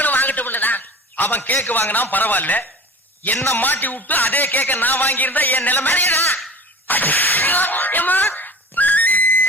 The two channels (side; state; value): both; normal; correlation 0.40